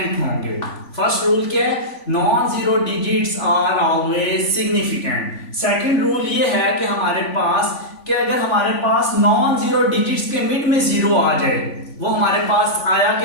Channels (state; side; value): late; right; 3.5 ms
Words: होंगे। फर्स्ट रूल क्या है? Non zero digits are always significant. Second rule ये है कि हमारे पास कि अगर हमारे पास नॉन जीरो डिजिट्स के मिड में जीरो आ जाए, वो हमारे पास आया